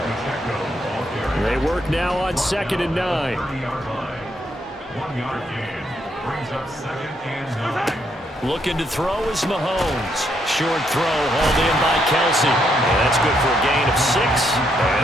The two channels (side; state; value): both; normal; correlation 0.76